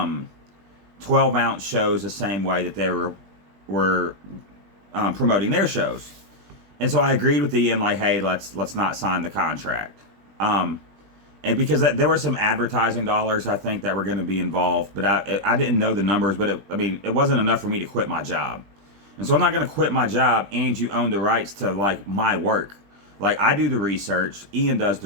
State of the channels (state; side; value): late; left; 20 ms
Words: ounce shows the same way that they were promoting their shows. And so I agreed with Ian, like, hey, let's not sign the contract. And because there were some advertising dollars, I think, that were going to be involved, but I didn't know the numbers, but it wasn't enough for me to quit my job. And so I'm not going to quit my job and you own the rights to, like, my work. Like, I do the research, Ian does